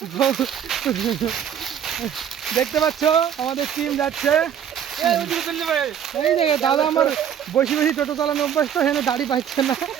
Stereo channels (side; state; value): left; quieter; 9.0 dB